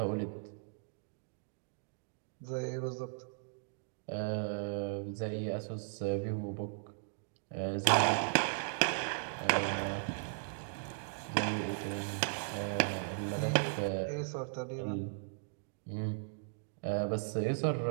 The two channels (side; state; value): left; silent; digital silence